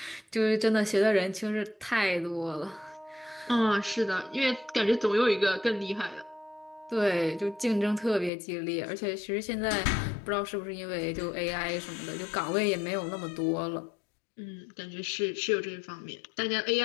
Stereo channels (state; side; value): drops out; right; at 8.3 s